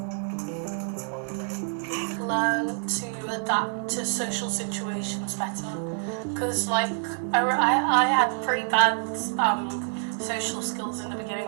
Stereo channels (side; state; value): left; silent; 56 dB below the other